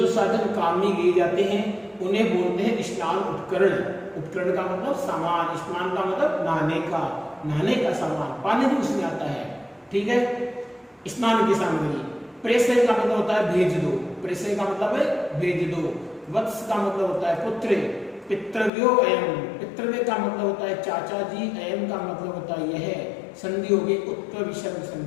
साधन काम में लिए जाते हैं उन्हें बोलते हैं स्नान उपकरण। उपकरण का मतलब सामान, स्नान का मतलब नहाने का, नहाने का सामान, पानी भी उसमें आता है। ठीक है, स्नान की सामग्री। प्रेषय का मतलब होता है भेज दो, प्रेषय का मतलब है भेज दो। वत्स का मतलब होता है पुत्र। पितृव्यो अयम, पितृव्य का मतलब होता है चाचा जी, अयम का मतलब होता है यह। संधि होगी उत्तर विसर्ग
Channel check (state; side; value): drops out; right; at 18.7 s